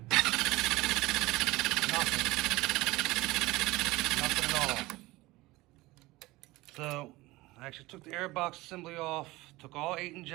at all. So I actually took the airbox assembly off, took all 8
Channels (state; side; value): quieter; left; 20.2 dB